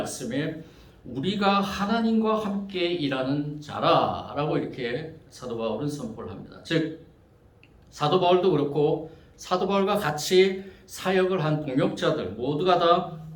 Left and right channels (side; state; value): both; identical; correlation 1.00